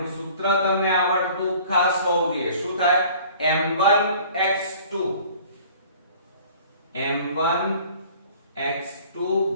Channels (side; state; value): both; inverted; correlation -0.49